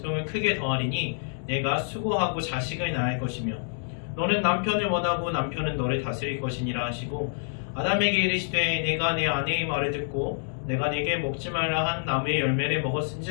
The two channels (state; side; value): silent; right; 60 dB below the other